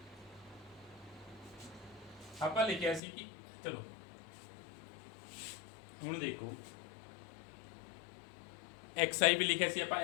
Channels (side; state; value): right; drops out; at 3.0 s